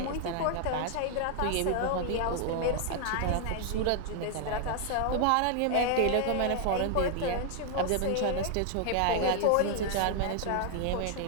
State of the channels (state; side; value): different; both; correlation 0.00